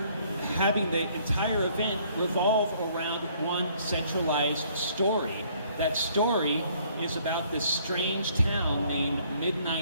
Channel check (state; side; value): inverted; both; correlation -0.62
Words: having the entire event revolve around one centralized story. That story is about this strange town named